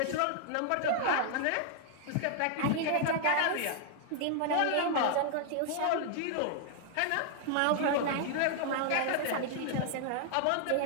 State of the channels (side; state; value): both; different; correlation 0.00